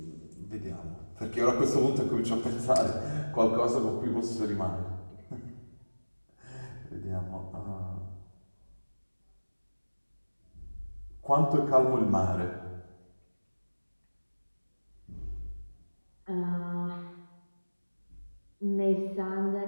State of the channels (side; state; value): both; inverted; correlation -1.00